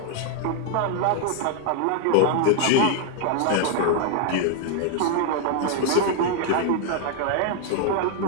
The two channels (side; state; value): both; different; correlation 0.00